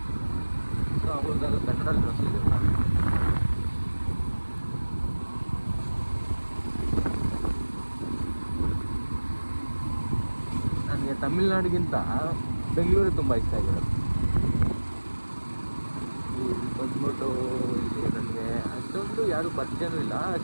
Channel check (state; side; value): inverted; both; correlation -1.00